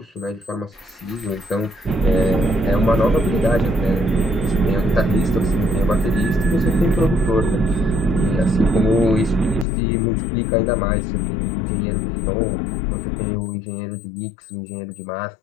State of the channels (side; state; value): right; drops out; at 9.7 s